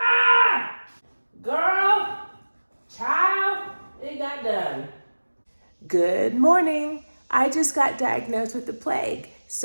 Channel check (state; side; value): inverted; both; correlation -1.00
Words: Girl, child, it got done. Good morning. I just got diagnosed with the plague.